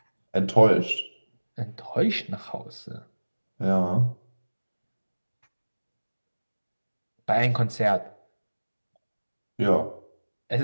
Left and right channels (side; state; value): both; inverted; correlation -1.00